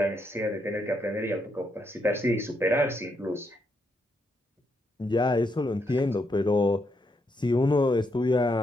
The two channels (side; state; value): both; normal; correlation 0.79